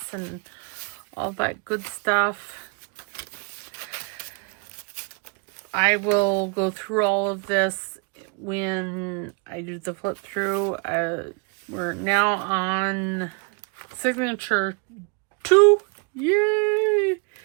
and all that good stuff. I will go through all of this when I do the flip through. We're now on signature 2. Yay!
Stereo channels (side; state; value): left; quieter; 33.1 dB